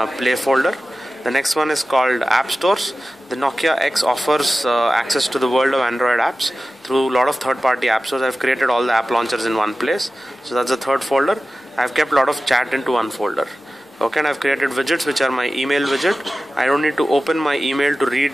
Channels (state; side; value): normal; both; correlation 0.95